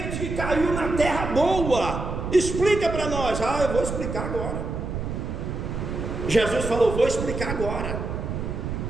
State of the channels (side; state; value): right; noise; rumble, 4 dB below the sound